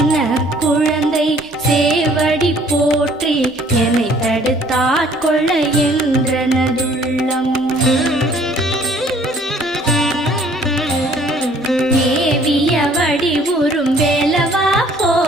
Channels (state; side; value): normal; both; correlation 0.58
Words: குழந்தை சேவடி போற்றி என்னை தடுத்தாட்கொள்ள என்றனதுள்ளம் மேவிய வடிவுறும் வேலவா